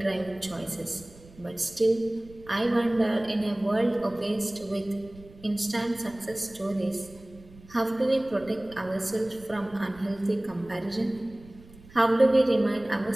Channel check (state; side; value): noise; right; rumble, 22 dB below the sound